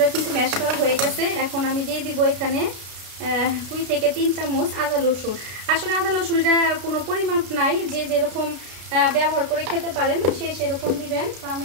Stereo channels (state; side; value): late; left; 33 ms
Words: কিন্তু ম্যাশ করা হয়ে গেছে। এখন আমি দিয়ে দিব এখানে 2 থেকে 3 চামচ আদা রসুন। আসলে আদা রসুনটা কোনো পরিমাপ নাই, যে যেরকম ব্যবহার করে খেতে পারেন সে সেরকম দিবেন। তো